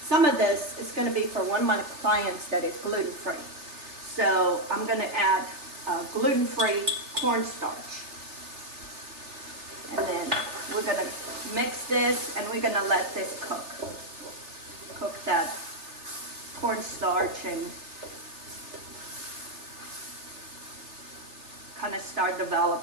some of this is gonna be for one of my clients that is gluten-free. So I'm gonna add gluten-free cornstarch. And then we're gonna mix this and we're gonna let this cook. Cook that cornstarch and kind of start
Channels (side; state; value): left; late; 3.3 ms